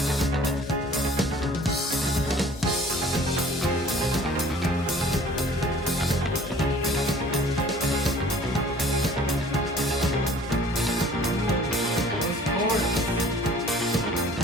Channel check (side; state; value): both; normal; correlation 0.52